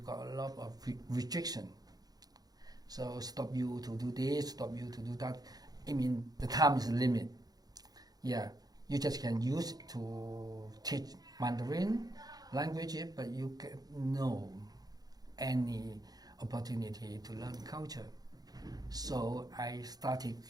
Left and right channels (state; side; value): late; left; 0.19 ms